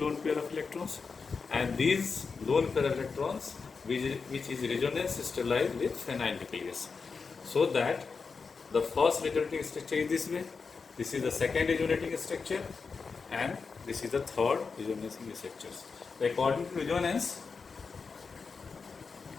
pair of electrons, and these lone pair of electrons which is resonance sterilized with phenyl nucleus, so that the first resonating structure is this way, this is the second resonating structure, and this is the third resonating structure. According to resonance,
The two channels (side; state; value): right; quieter; 5.0 dB